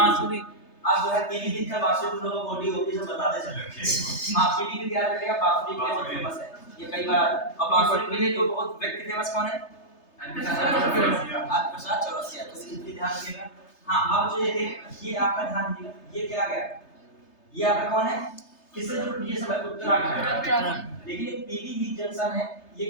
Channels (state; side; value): late; right; 3.3 ms